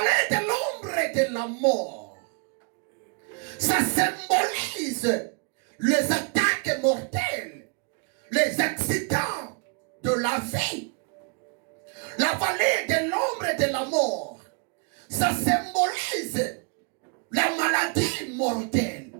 de l'ombre et de la mort, ça symbolise les attaques mortelles, les accidents de la vie. La vallée de l'ombre et de la mort, ça symbolise la maladie mortelle.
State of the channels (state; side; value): quieter; left; 36.8 dB